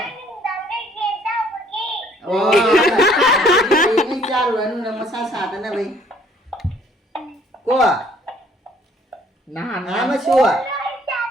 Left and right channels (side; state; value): both; normal; correlation 0.60